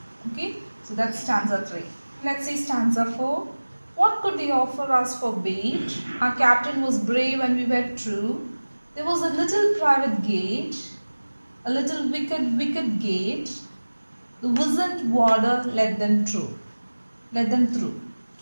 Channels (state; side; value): inverted; both; correlation -1.00